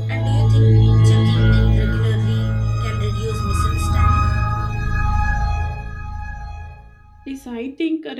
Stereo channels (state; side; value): identical; both; correlation 1.00